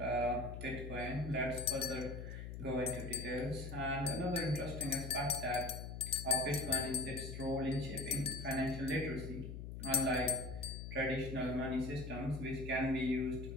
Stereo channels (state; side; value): noise; left; hum, 8 dB below the sound